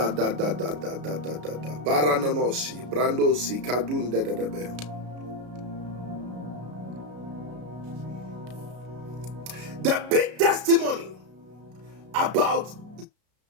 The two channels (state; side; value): late; left; 33 ms